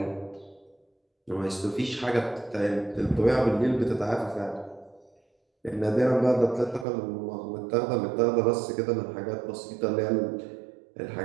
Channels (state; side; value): drops out; left; at 6.9 s